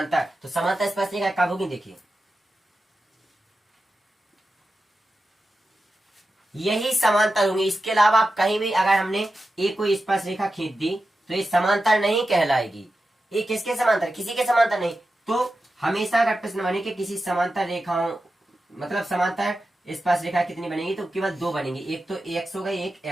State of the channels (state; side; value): normal; both; correlation 0.91